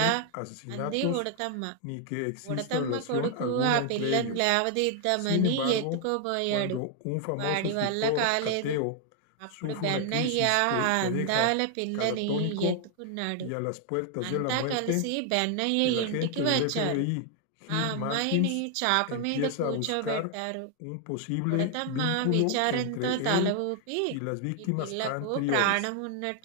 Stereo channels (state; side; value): different; both; correlation 0.00